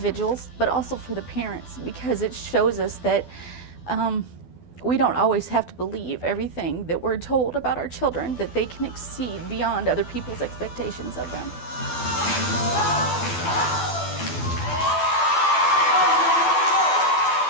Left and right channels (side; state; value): right; late; 12 ms